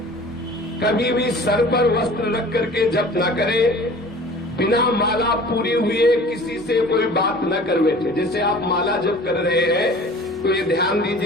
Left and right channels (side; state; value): both; normal; correlation 0.45